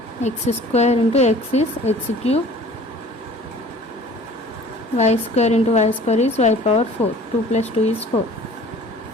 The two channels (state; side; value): normal; both; correlation 0.48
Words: x square into x is x cube, y square into y square is y power 4, 2 plus 2 is 4.